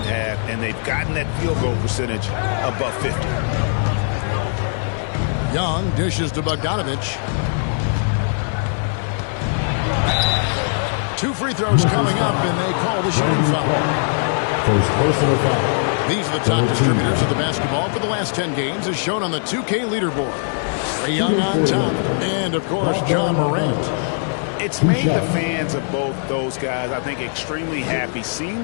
half. And they've gotten that field goal percentage above 50. Young dishes to Bogdanovich. 2 free throws coming up, and they call the shooting foul. First personal foul. These are the top distributors of the basketball for the last 10 games, as shown on the 2K leaderboard. Trae Young on top, and, of course, John Morant. It's made the fans of both those guys, I think, extremely happy, seeing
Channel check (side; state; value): right; silent; digital silence